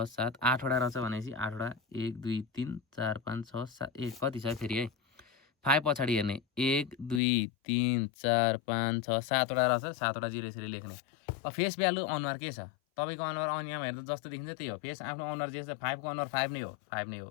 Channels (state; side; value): drops out; right; at 7.2 s